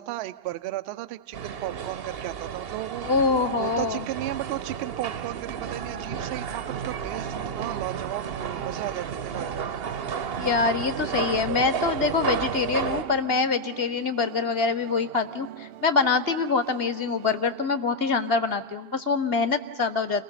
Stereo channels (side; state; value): left; late; 2.8 ms